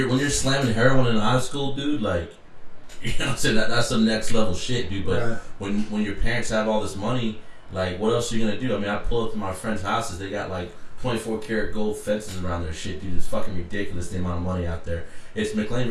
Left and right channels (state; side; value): identical; both; correlation 1.00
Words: slamming heroin in high school, dude, like, you know what I'm saying, that's some next level shit, dude. But when your parents have all this money, like, what else are you gonna do? I mean, I pull up to my friends' houses, they got like 24 karat gold fences around their shit, dude. It's fucking ridiculous the amount of money out there. It's McLean,